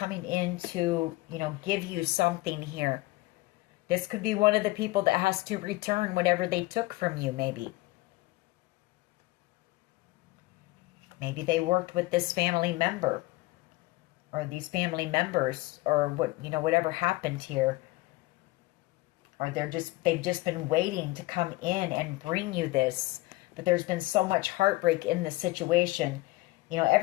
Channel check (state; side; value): quieter; right; 20.3 dB